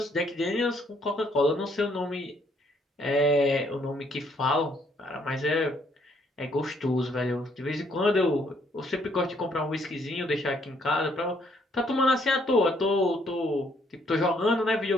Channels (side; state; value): both; normal; correlation 0.68